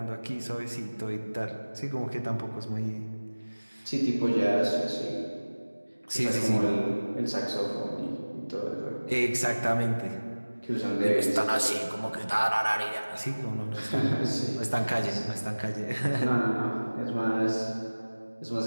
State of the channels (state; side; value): inverted; both; correlation -1.00